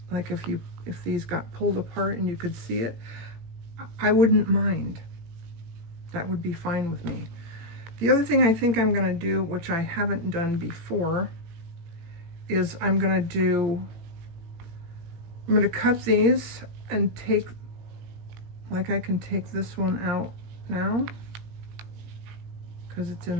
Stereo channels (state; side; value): late; left; 18 ms